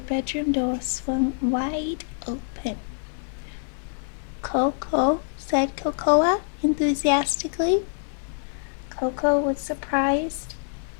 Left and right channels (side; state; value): right; silent; digital silence